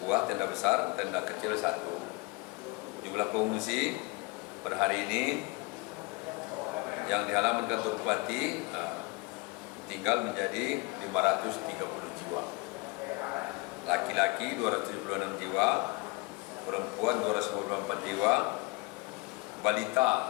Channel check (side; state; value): right; quieter; 26.4 dB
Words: tenda besar, tenda kecil 1. Jumlah pengungsi per hari ini yang di halaman kantor bupati tinggal menjadi 530 jiwa. Laki-laki 276 jiwa, perempuan 294 jiwa,